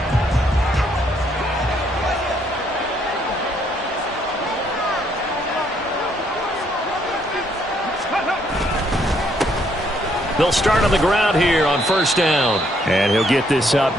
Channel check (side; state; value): both; normal; correlation 0.70